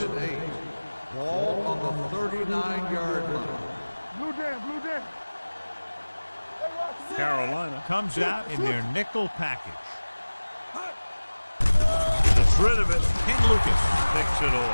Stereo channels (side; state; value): both; inverted; correlation -1.00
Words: and 8. Ball on the 39-yard line. Blue down. Carolina comes out in their nickel package. Gets rid of it. Ken Lucas picks it